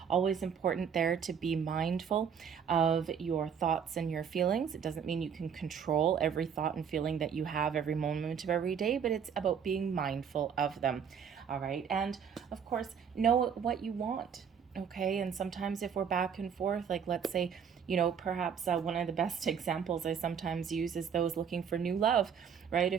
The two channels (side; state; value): left; quieter; 7.4 dB